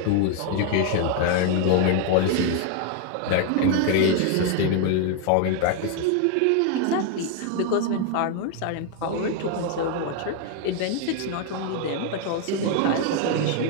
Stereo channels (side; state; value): both; different; correlation 0.00